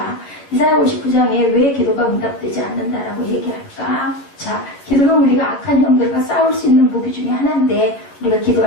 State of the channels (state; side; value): late; right; 10 ms